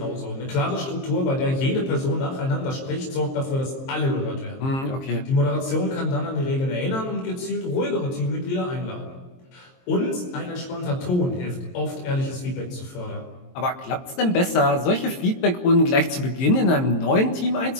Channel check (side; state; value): right; late; 23 ms